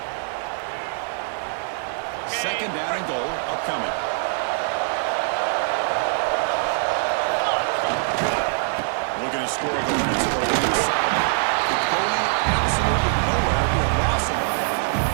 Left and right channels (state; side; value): silent; left; 60 dB below the other